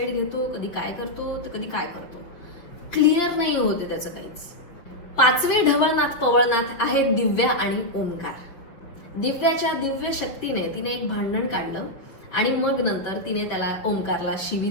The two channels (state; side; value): late; right; 5.9 ms